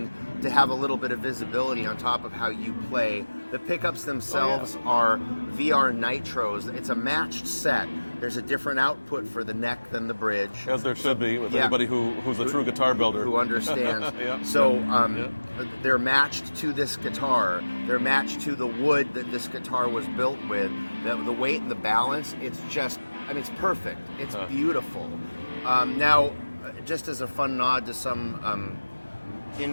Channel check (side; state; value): both; inverted; correlation -1.00